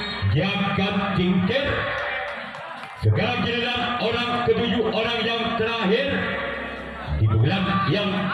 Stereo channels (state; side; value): identical; both; correlation 1.00